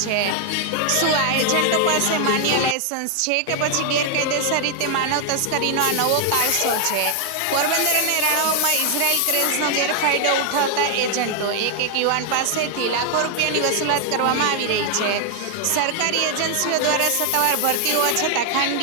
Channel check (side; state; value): both; different; correlation 0.00